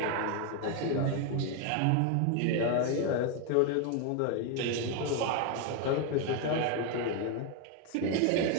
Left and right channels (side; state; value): both; different; correlation 0.01